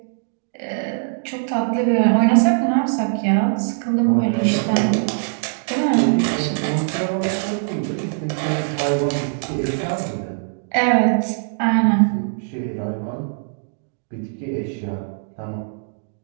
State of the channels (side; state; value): left; silent; digital silence